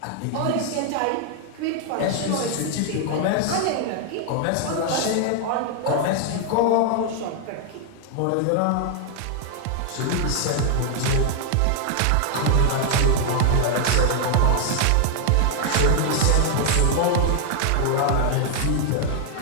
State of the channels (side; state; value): both; different; correlation 0.00